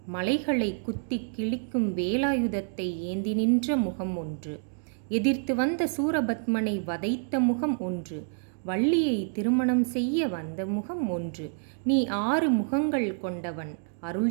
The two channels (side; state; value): left; silent; digital silence